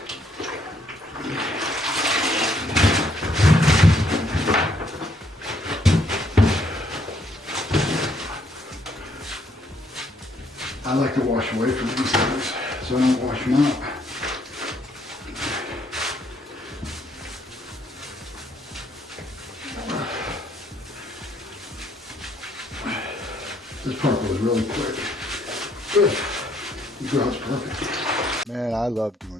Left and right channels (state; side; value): normal; both; correlation 0.69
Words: I like to wash away from these things, so I don't wash them out. This part goes really quick. Good. The grout's perfect. Man, I love